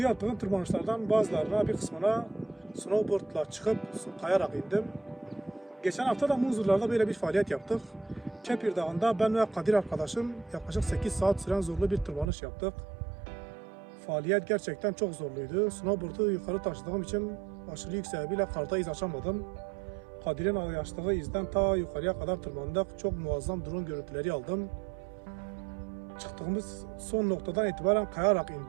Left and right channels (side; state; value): left; drops out; at 12.3 s